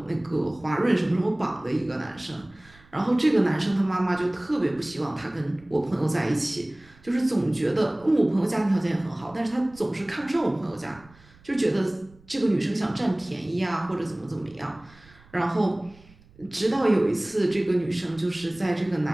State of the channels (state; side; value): noise; right; rumble, 26 dB below the sound